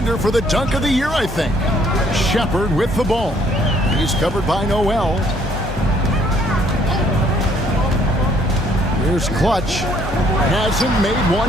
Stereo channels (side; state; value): both; normal; correlation 0.64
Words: for the dunk of the year, I think. Shepard with the ball. He's covered by Noel. Here's Clutch. Hasn't made